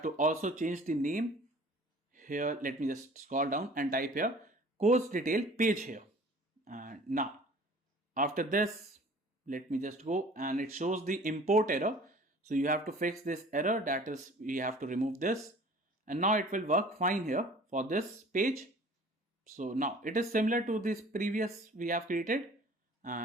to also change the name. Here let me just scroll down and type here course detail page here. And now after this, let me just go, and it shows the import error. So you have to fix this error, that is we have to remove this, and now it will work fine here for this page. So now it is similar to this previous we have created,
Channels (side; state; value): both; normal; correlation 0.47